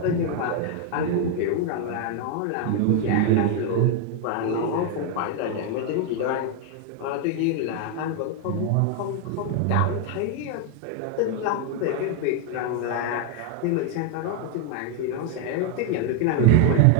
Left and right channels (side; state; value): both; different; correlation 0.01